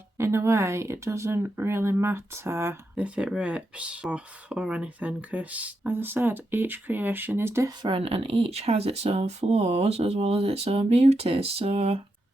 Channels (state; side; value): normal; both; correlation 0.85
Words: in a way, it doesn't really matter if it rips off or anything. Because as I said, each creation is different and each has its own flaws as well as its own beauties. So